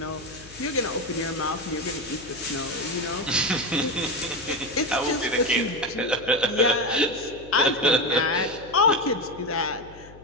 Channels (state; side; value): noise; left; hum, 20 dB below the sound